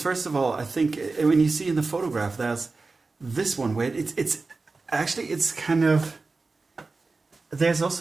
of all, I think when you see in the photograph, there's this one where it's kind of. There's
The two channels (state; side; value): quieter; left; 3.8 dB